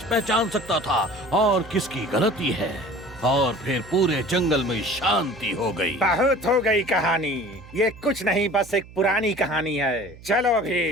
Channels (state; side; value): noise; right; hum, 19 dB below the sound